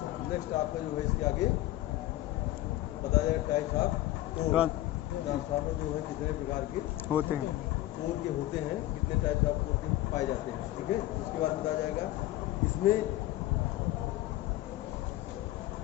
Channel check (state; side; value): quieter; right; 15.6 dB